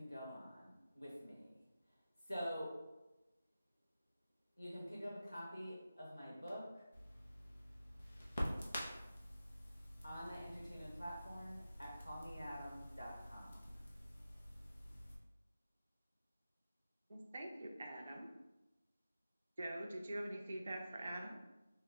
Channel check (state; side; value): inverted; both; correlation -0.93